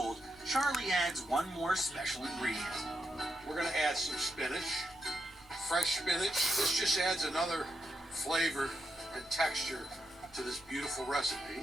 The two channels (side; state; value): right; noise; rumble, 27 dB below the sound